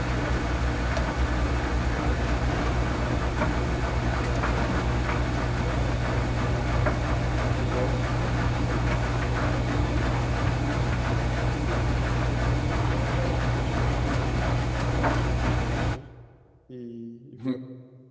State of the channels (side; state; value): both; identical; correlation 1.00